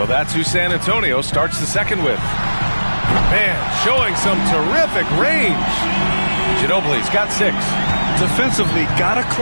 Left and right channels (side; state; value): both; inverted; correlation -1.00